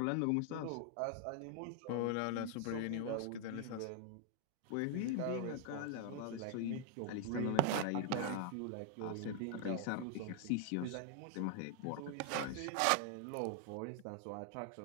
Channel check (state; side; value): different; both; correlation 0.00